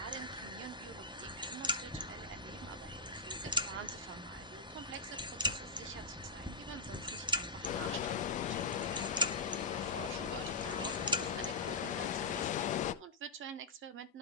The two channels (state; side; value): quieter; right; 3.3 dB